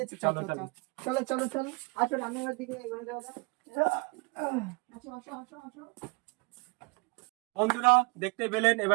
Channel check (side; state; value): left; quieter; 28.6 dB